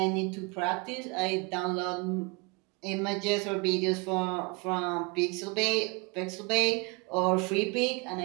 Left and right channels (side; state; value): left; quieter; 28.7 dB